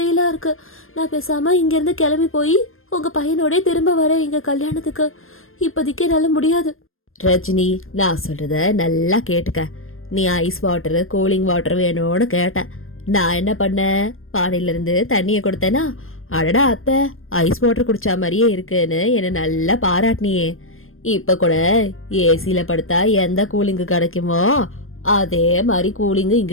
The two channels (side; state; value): right; late; 0.60 ms